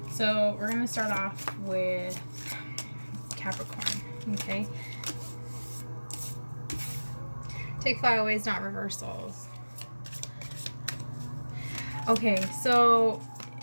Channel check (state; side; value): inverted; both; correlation -1.00